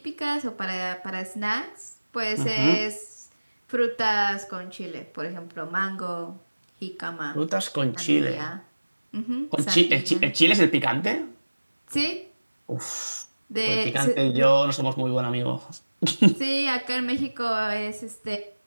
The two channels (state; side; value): inverted; both; correlation -1.00